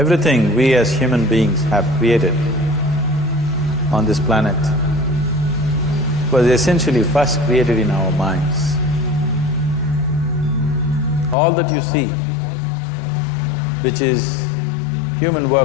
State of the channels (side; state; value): right; drops out; at 11.4 s